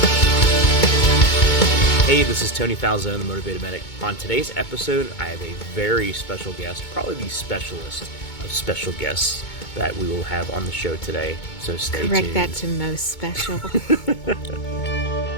Hey, this is Tony Falzone, the Motivated Medic. On today's episode, I have a very special guest, probably the specialist of special guests that we will have on the show today. So stay tuned. Correct that to most special.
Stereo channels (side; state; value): right; late; 2.2 ms